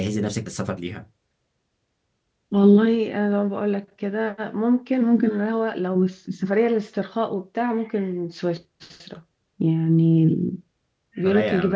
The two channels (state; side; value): identical; both; correlation 1.00